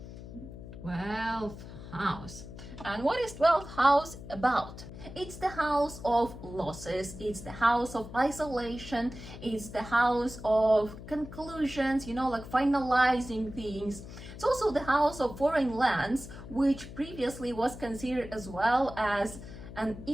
12th house. And what is 12th house about? It's the house of losses, it's the house of isolation, it's the house of conclusions, you know, like finalizing things. It's also the house of foreign lands, which previously was considered as well as an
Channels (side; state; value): left; noise; hum, 13 dB below the sound